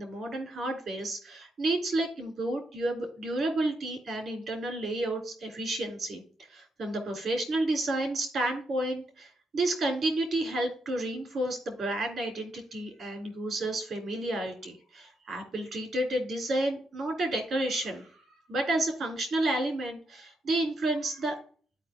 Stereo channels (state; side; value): normal; both; correlation 0.80